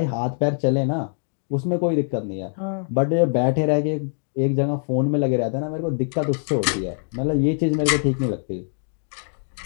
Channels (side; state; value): right; silent; digital silence